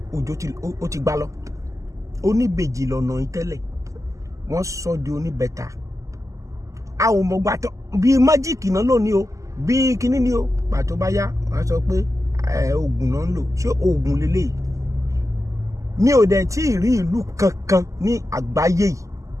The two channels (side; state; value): left; late; 0.16 ms